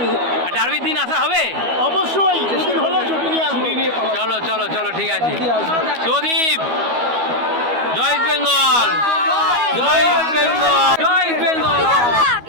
ডার্বির দিন আসা হবে অবশ্যই, দুদিন হলো ছুটি নিয়ে আসবো। চলো চলো চলো ঠিক আছে। সুদীপ, জয় ইস্ট বেঙ্গল, জয় ইস্ট বেঙ্গল, জয় ইস্ট বেঙ্গল।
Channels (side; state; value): left; late; 12 ms